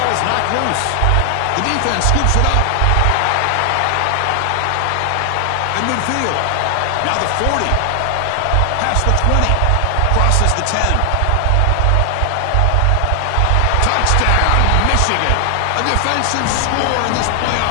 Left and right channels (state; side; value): different; both; correlation 0.00